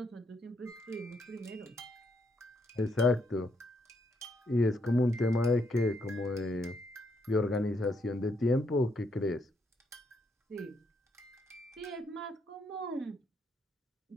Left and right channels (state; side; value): normal; both; correlation 0.76